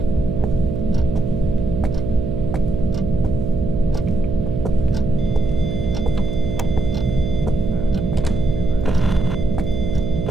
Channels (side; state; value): right; noise; hum, 3 dB below the sound